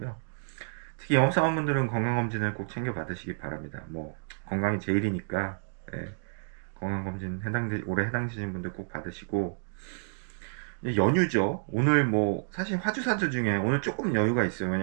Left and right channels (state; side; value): silent; left; digital silence